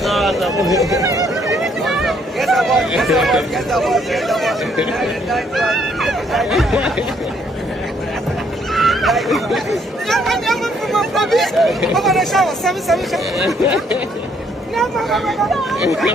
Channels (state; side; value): normal; both; correlation 0.68